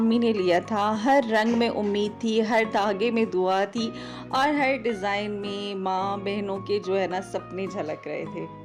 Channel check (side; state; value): both; identical; correlation 1.00